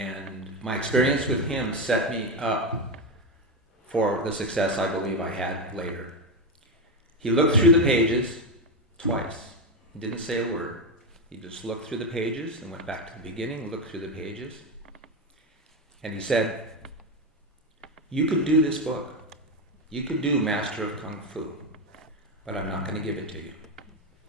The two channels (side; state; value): both; normal; correlation 0.12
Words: my experience with him set me up for the success I believe I had later. He looked through the pages twice. He didn't say a word. He just looked through the pages and went back to the beginning, looked through the pages. And he said, "You could do this book. You could do Master of Kung Fu, but I'm not going to give it to you."